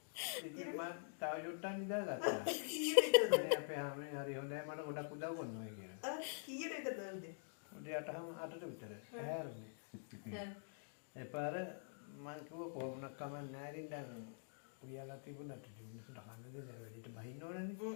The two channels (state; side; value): silent; right; digital silence